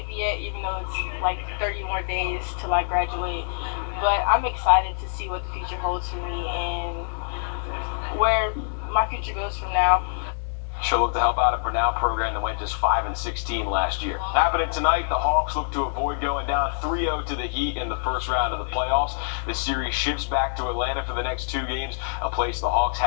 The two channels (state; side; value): silent; right; digital silence